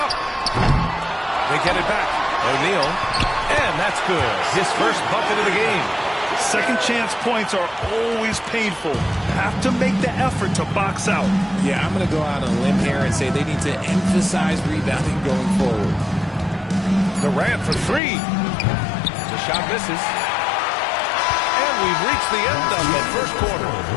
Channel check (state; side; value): drops out; right; at 18.0 s